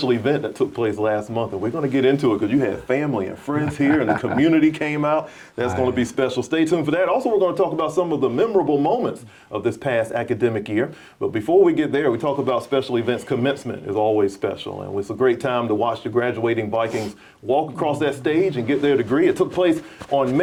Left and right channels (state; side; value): identical; both; correlation 1.00